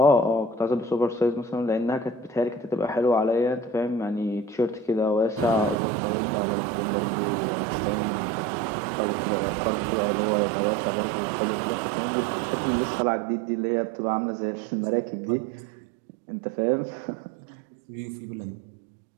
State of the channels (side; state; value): left; drops out; at 5.8 s